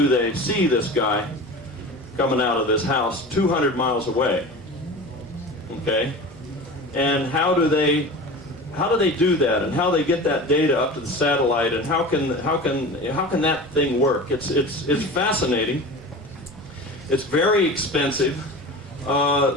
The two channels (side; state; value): both; normal; correlation 0.33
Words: they see this guy coming out of this house 200 miles away? Okay? And how do they do that, and how they get that data up to the satellite, and how can that thing work? It's fascinating. It's very expensive.